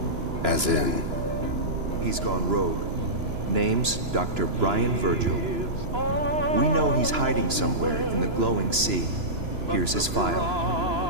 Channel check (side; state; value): left; late; 2.9 ms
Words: As in? He's gone rogue. Name's Dr. Brian Virgil. We know he's hiding somewhere in the glowing sea. Here's his file.